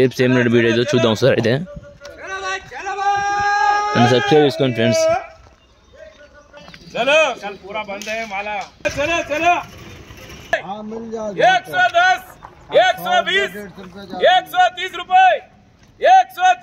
ఏం రేట్ బీట్ అయితే చూద్దాం సార్. అయితే నన్ను సబ్స్క్రైబ్ చేసుకోండి ఫ్రెండ్స్. चलो कल पूरा बंद है माला. चलो चलो 110 120 130 रुपए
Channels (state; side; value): identical; both; correlation 1.00